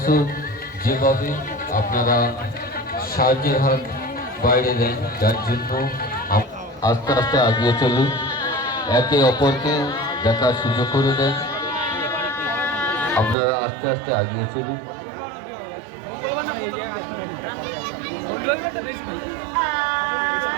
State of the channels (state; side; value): drops out; left; at 13.4 s